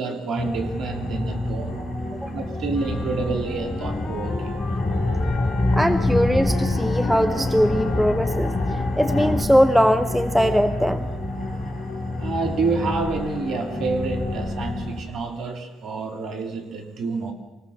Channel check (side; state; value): both; normal; correlation 0.89